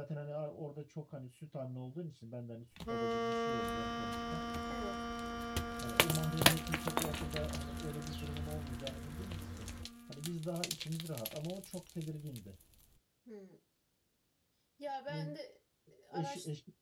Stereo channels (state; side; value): identical; both; correlation 1.00